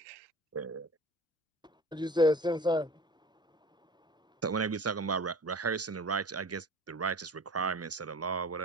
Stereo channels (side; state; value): both; normal; correlation 0.40